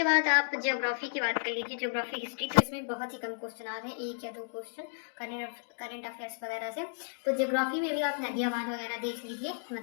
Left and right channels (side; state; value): right; silent; digital silence